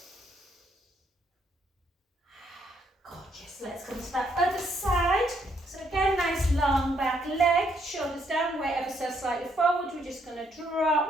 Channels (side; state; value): both; normal; correlation 0.72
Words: Gorgeous, let's come to that other side. So again, nice long back leg, shoulders down, weight ever so slightly forward. We're just going to